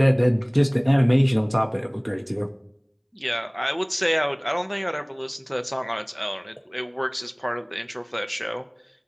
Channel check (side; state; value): both; identical; correlation 1.00